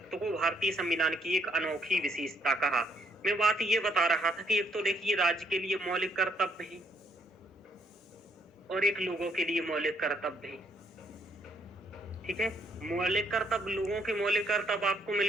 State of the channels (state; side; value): normal; both; correlation 0.70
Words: को भारतीय संविधान की एक अनोखी विशेषता कहा। मैं बात ये बता रहा था कि एक तो देखिए राज्य के लिए मौलिक कर्तव्य है और एक लोगों के लिए मौलिक कर्तव्य है। ठीक है? मौलिक कर्तव्य, लोगों के मौलिक कर्तव्य आपको